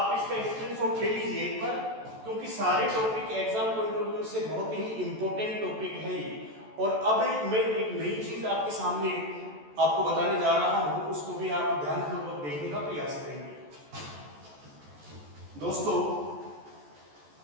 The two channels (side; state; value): left; late; 14 ms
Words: इसका स्क्रीनशॉट ले लीजिए एक बार, क्योंकि सारे topic exam point of view से बहुत ही इंपॉर्टेंट टॉपिक है ये। और अब मैं एक नई चीज आपके सामने आपको बताने जा रहा हूं, उसको भी आप ध्यानपूर्वक देखने का प्रयास करेंगे। दोस्तों